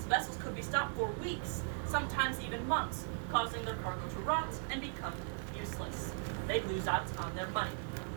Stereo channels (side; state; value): left; silent; 52 dB below the other